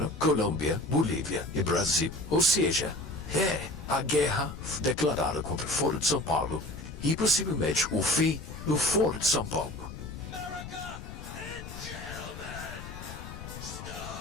Colômbia, Bolívia e Brasil. Ou seja, é a guerra declarada contra o Foro de São Paulo e possivelmente o fim do Foro de São Paulo.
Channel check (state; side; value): noise; left; rumble, 11 dB below the sound